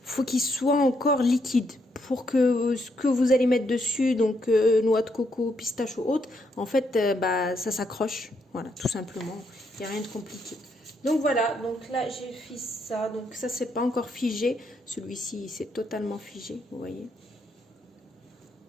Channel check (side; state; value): both; normal; correlation 0.76